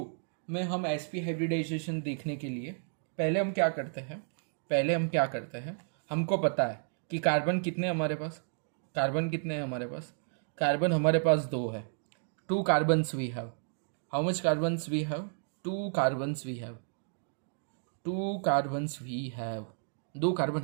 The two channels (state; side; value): silent; left; digital silence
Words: में हम sp हाइब्रिडाइजेशन देखने के लिए पहले हम क्या करते हैं, हमको पता है कि कार्बन कितने हैं हमारे पास। कार्बन हमारे पास 2 है। 2 carbons we have. How much carbons we have? 2 carbons we have. 2 carbon